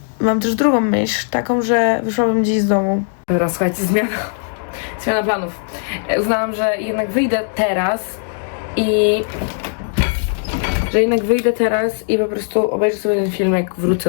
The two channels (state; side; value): silent; right; 60 dB below the other